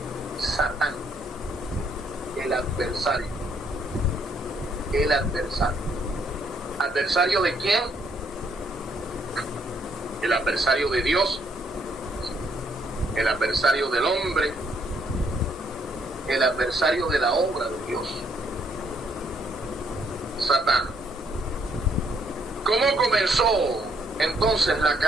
Satán, el adversario. El adversario. ¿Adversario de quién? El adversario de Dios, el adversario del hombre, el adversario de la obra de Dios. Satán. ¿Cómo comenzó entonces la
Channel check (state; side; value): normal; both; correlation 0.70